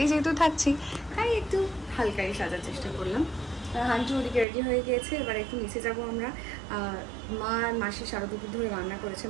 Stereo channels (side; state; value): left; drops out; at 4.5 s